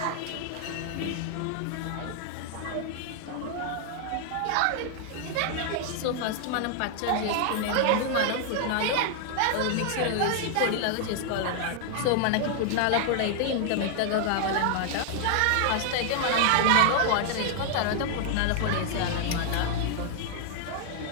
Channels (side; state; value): both; different; correlation 0.00